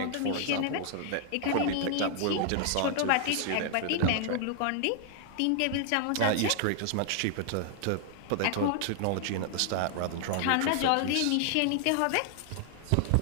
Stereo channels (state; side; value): different; both; correlation 0.00